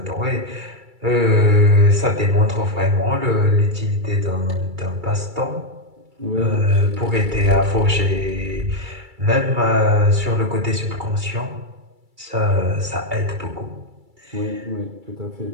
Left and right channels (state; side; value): late; left; 2.3 ms